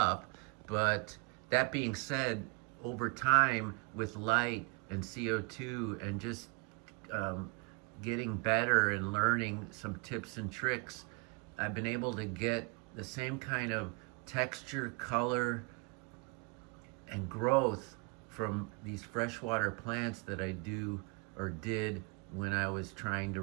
But that being said, over time, with light and CO2 and just getting better and learning some tips and tricks, I've been able to get the same kind of texture, color, and growth from these freshwater plants that I do or did when I was trying to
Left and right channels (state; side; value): quieter; left; 31.6 dB